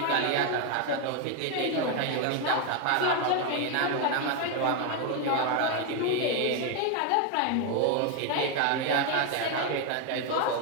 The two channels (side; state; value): both; different; correlation 0.01